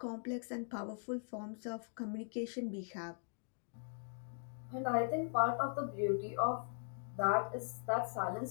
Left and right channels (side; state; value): right; silent; digital silence